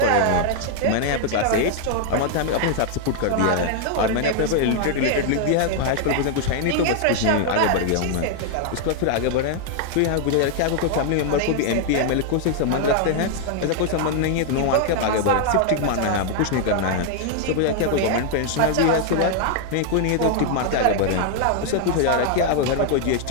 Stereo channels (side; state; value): both; different; correlation 0.00